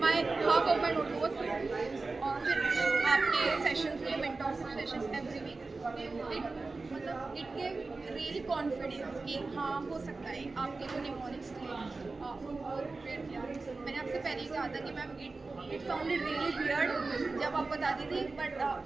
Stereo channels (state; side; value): quieter; left; 3.7 dB